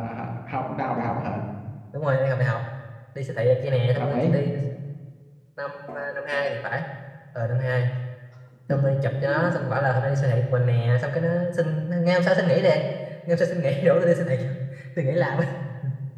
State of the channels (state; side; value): identical; both; correlation 1.00